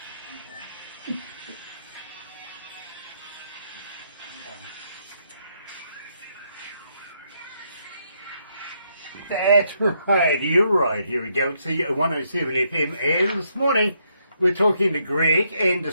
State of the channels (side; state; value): both; inverted; correlation -0.76